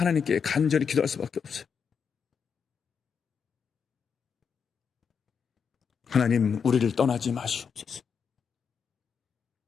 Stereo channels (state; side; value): quieter; right; 6.5 dB